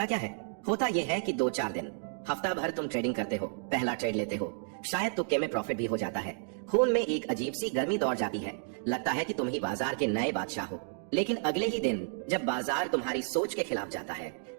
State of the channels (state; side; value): silent; left; digital silence